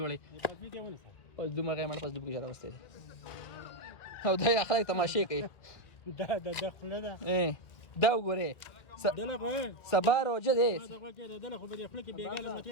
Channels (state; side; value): late; right; 1.8 ms